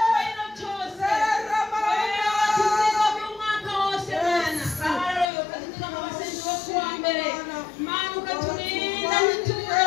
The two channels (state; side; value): drops out; right; at 5.2 s